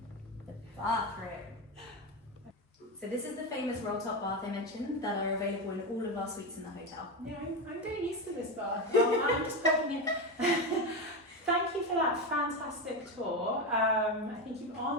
The bathroom. So this is the famous roll-top bath I mentioned that are available in all of our suites in the hotel. Yeah, I'm getting used to this bath. Well, I'm just poking you. Thank you for that fantastic tour. I think you've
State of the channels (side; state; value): both; normal; correlation 0.15